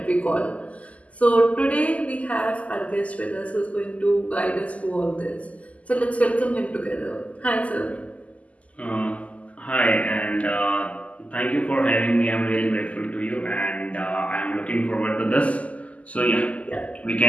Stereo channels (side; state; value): right; late; 0.069 ms